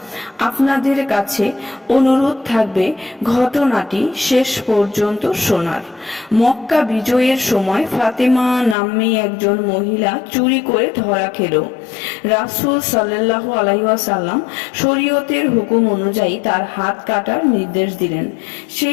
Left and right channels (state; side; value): drops out; right; at 8.8 s